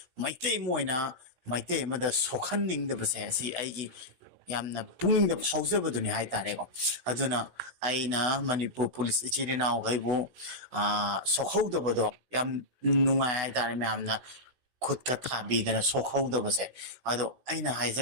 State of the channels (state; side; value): late; left; 16 ms